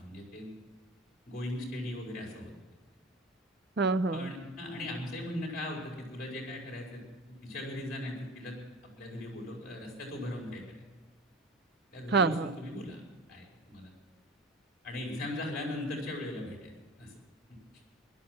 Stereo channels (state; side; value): normal; both; correlation 0.36